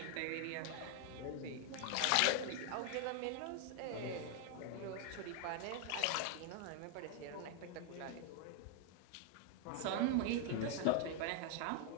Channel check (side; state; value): both; different; correlation 0.00